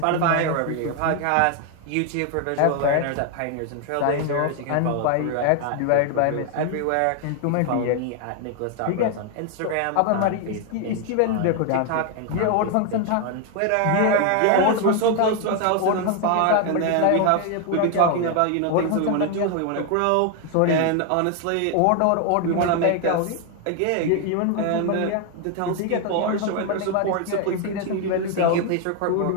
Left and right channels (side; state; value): both; different; correlation 0.01